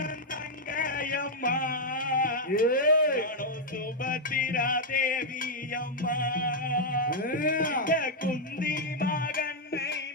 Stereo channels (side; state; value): both; normal; correlation -0.02